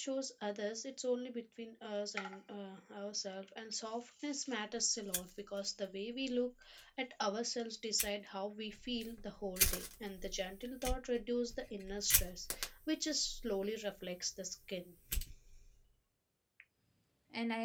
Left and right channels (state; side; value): identical; both; correlation 1.00